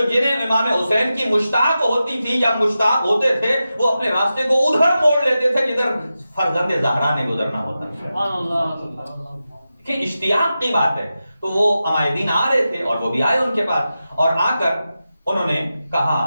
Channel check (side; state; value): both; inverted; correlation -0.92